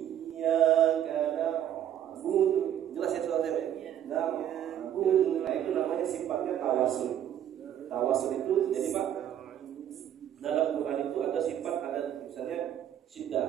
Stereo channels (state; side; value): quieter; left; 10.5 dB